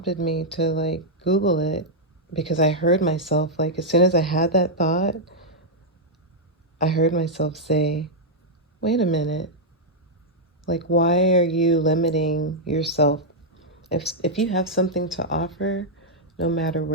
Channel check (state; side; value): normal; both; correlation -0.05